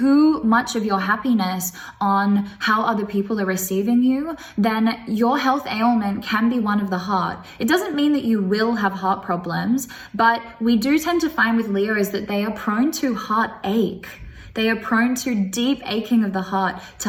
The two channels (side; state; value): both; identical; correlation 1.00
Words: much of your happiness on how other people are receiving you, then your health ailment can be one of the heart. It doesn't mean that you will have heart problems, but we do tend to find with Leos that they are prone to heartache. They are prone to deep aching of the heart,